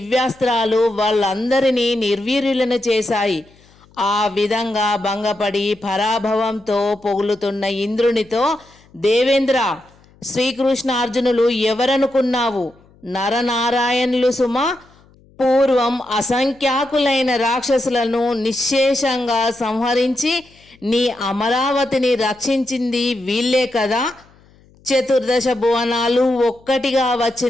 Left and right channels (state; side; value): noise; left; hum, 29 dB below the sound